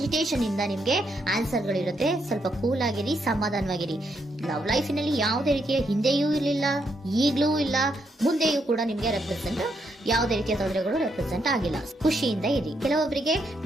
ಇಂದ ನಿಮ್ಗೆ ಆನ್ಸರ್ ಗಳಿರುತ್ತೆ. ಸ್ವಲ್ಪ ಕೂಲ್ ಆಗಿರಿ, ಸಮಾಧಾನವಾಗಿರಿ. ಲವ್ ಲೈಫಿನಲ್ಲಿ ಯಾವುದೇ ರೀತಿಯ ಹಿಂದೆಯೂ ಇರಲಿಲ್ಲ, ಈಗಲೂ ಇಲ್ಲ, ಮುಂದೆಯೂ ಕೂಡ ನಿಮ್ಗೆ ಯಾವುದೇ ರೀತಿಯ ತೊಂದರೆಗಳು ರೆಪ್ರೆಸೆಂಟ್ ಆಗಿಲ್ಲ. ಖುಷಿಯಿಂದ ಇರಿ. ಕೆಲವೊಬ್ಬರಿಗೆ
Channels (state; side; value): normal; both; correlation 0.78